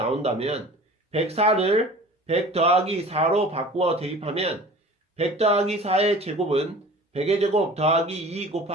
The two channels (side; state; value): both; normal; correlation 0.43